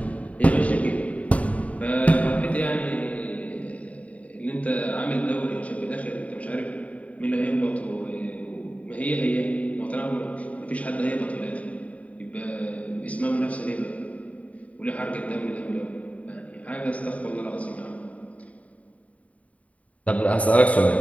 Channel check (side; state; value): right; late; 0.068 ms